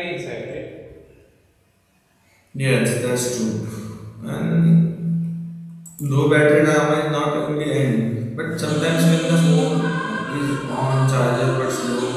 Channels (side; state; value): both; identical; correlation 1.00